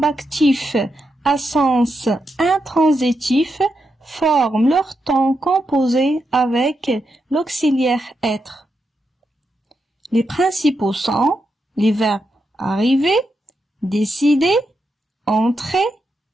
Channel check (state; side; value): normal; both; correlation 0.84